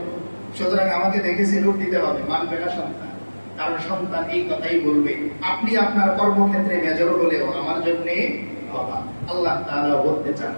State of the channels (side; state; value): both; inverted; correlation -1.00